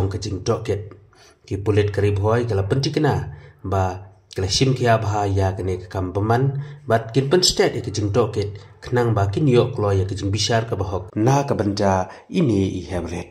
ka jing toket ki pulit karib hoi kala pentikna ba kala sim kia bha ya kene kam baman bat kin pen state ke jing toket khnang ba kin yo klo ya ke jing bishar ka bahok na ka banda ini I have read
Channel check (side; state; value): both; identical; correlation 1.00